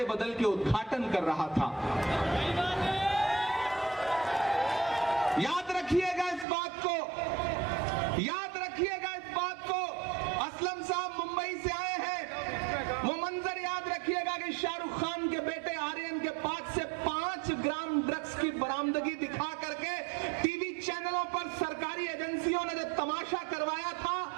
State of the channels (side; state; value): left; drops out; at 6.5 s